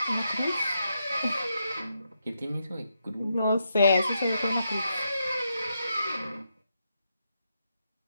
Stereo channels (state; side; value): inverted; both; correlation -0.82